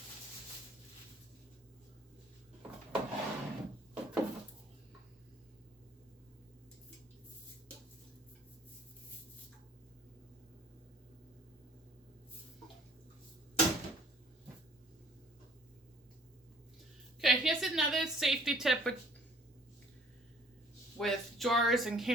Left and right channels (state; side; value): normal; both; correlation 0.55